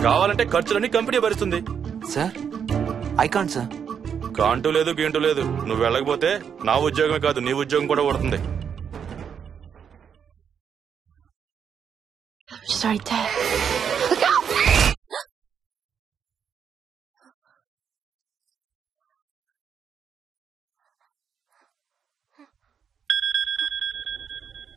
కావాలంటే ఖర్చులన్నీ కంపెనీ భరిస్తుంది. Sir I can't sir. కాంటూ లేదు గీంటూ లేదు. నువ్వు వెళ్ళకపోతే నా ఉద్యోగమే కాదు నీ ఉద్యోగం కూడా పడుతుంది.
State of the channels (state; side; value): quieter; left; 7.5 dB